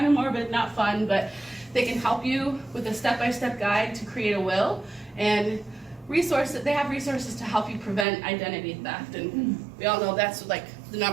of morbid, not fun, but they can help you with a step-by-step guide to create a will, and they have resources to help you prevent identity theft, and we all know that's like the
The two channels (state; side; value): drops out; left; at 8.1 s